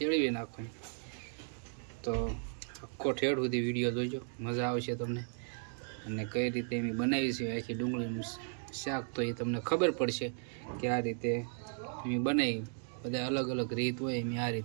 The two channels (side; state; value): left; silent; 54 dB below the other